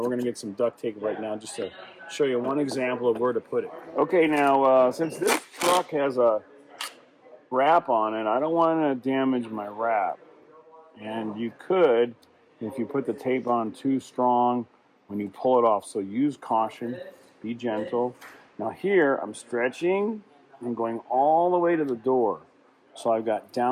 going to get some duct tape right now just to show you one example of where to put it. Okay, now since this truck has a wrap on it, I don't want to damage my wrap. And you could, if you put the tape on too strong when you pull it off. So use caution, be gentle. Now here, I'm stretching and going all the way to the door. So I've got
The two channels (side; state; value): both; identical; correlation 1.00